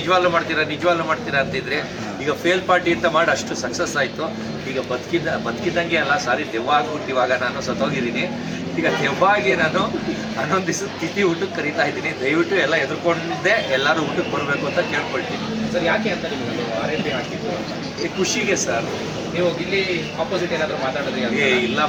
ಮಾಡ್ತೀರಾ ಅಂತಿದ್ರೆ, ಈಗ ಫೇಲ್ ಪಾರ್ಟಿ ಅಂತ ಮಾಡಿ ಅಷ್ಟು ಸಕ್ಸಸ್ ಆಯಿತು. ಈಗ ಬದುಕಿದ್ದಂಗೆ ಅಲ್ಲ, ಸಾರಿ ದೆವ್ವ ಆಗ್ಬಿಟ್ಟು ಇವಾಗ ನಾನು ಸತ್ತೋಗಿದ್ದೀನಿ. ಈಗ ದೆವ್ವಾಗಿ ನಾನು 11 ದಿವಸ ತಿಥಿ ಊಟಕ್ಕೆ ಕರೀತಾ ಇದ್ದೀನಿ. ದಯವಿಟ್ಟು ಎಲ್ಲ ಎದುರ್ಕೊಂಡಿದ್ದೆ ಎಲ್ಲರೂ ಊಟಕ್ಕೆ ಬರಬೇಕು ಅಂತ ಕೇಳ್ಕೊಳ್ತೀನಿ ಸರ್. ಯಾಕೆ ಅಂತ ನಿಮಗೆ RIP ಹಾಕಿದ್ದು? ಖುಷಿಗೆ ಸರ್. ನೀವು ಇಲ್ಲಿ ಆಪೋಸಿಟ್ ಏನಾದರೂ ಮಾತಾಡಿದ್ರಿ?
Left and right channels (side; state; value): both; identical; correlation 1.00